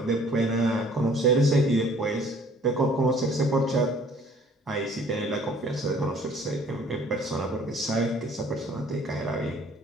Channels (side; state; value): both; normal; correlation 0.56